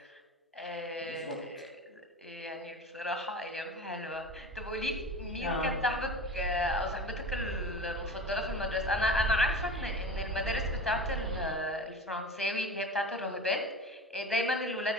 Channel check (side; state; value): both; normal; correlation 0.34